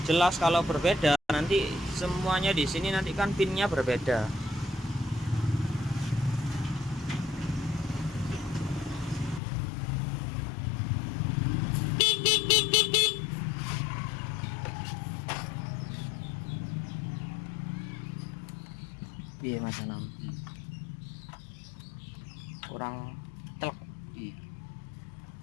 Jelas kalau berbeda nanti semuanya di sini nanti kan pinnya berbeda. Piye Mas Anam? Kurang telek. Iya.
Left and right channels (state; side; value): drops out; right; at 9.4 s